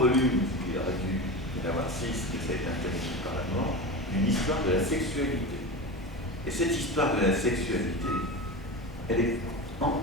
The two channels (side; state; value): both; normal; correlation 0.25